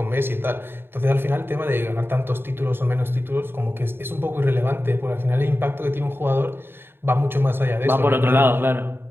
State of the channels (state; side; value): late; left; 0.11 ms